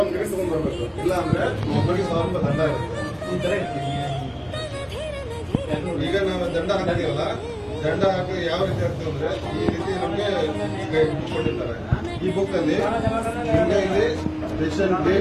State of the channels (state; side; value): identical; both; correlation 1.00